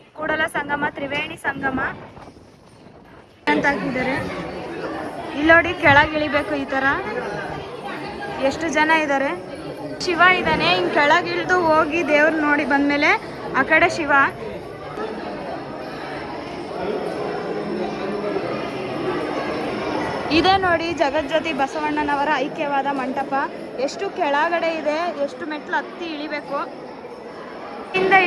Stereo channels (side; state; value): both; identical; correlation 1.00